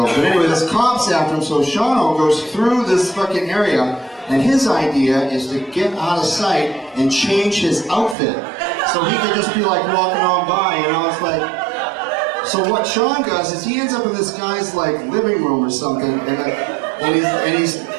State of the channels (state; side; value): drops out; left; at 8.2 s